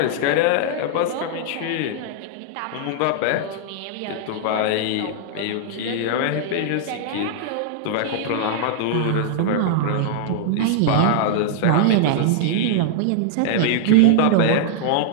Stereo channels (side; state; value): both; different; correlation -0.01